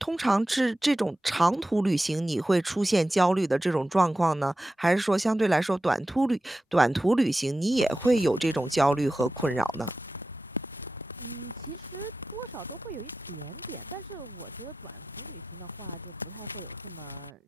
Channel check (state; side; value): normal; both; correlation 0.93